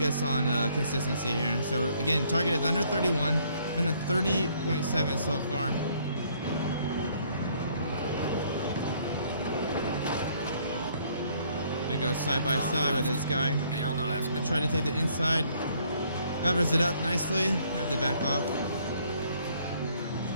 on consistency here. So again, target is under 31. Went at 30.7 so far. Gonna go side by side with this guy. Clear on the left. I try to take the inside. Covers it up nicely. Have to back off.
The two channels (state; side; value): inverted; both; correlation -0.64